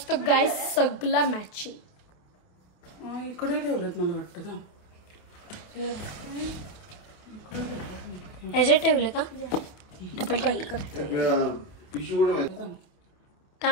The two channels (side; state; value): right; late; 28 ms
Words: गाईज सगळं मॅचिंग. इकडे ठेवलं मला वाटतं. ह्याच्यात ठेवले का डबल टेप